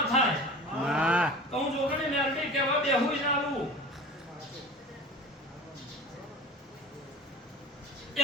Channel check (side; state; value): both; normal; correlation 0.37